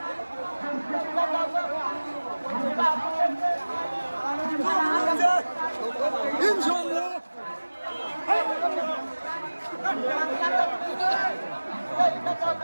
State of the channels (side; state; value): both; inverted; correlation -1.00